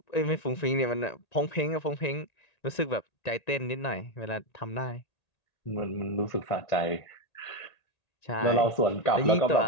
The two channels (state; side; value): late; right; 1.9 ms